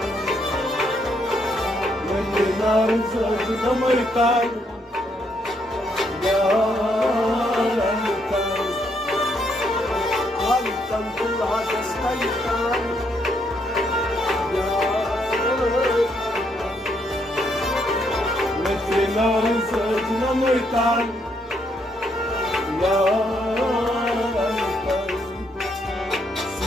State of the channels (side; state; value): both; normal; correlation 0.74